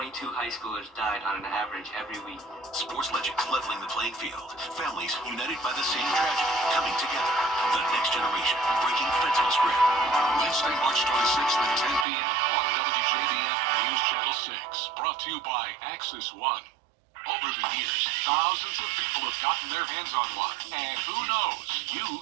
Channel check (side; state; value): left; drops out; at 12.1 s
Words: high schoolers died on an average every week. Sports legends leveling the playing field. Families united by the same tragedy coming together. The next generation breaking fentanyl's grip. Wednesday, March 26th at 10 p.m. on WJBF News Channel 6. Brought to you by Axis One. Over the years, thousands of people have gotten their hands on one. And who knows,